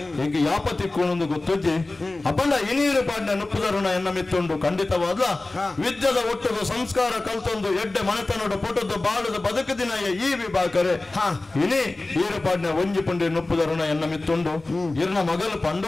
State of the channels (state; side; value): quieter; right; 3.0 dB